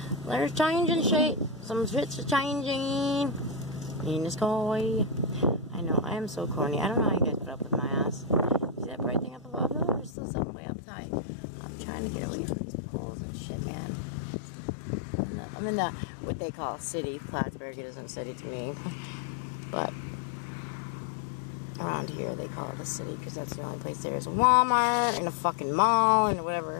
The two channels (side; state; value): right; drops out; at 10.1 s